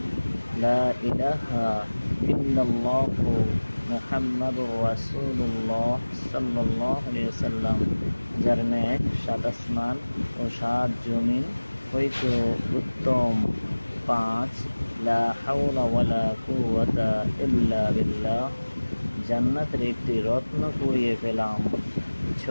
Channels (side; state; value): both; inverted; correlation -1.00